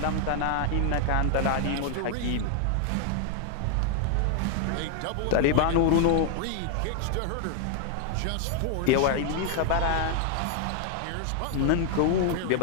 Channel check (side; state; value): both; different; correlation 0.00